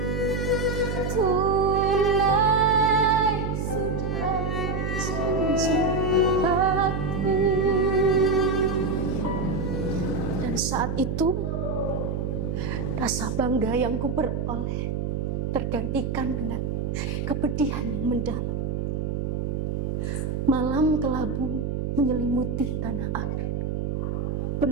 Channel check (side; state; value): right; noise; hum, 1 dB below the sound